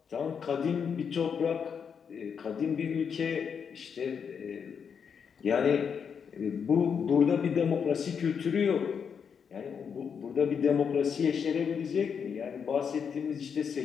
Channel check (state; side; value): quieter; right; 6.8 dB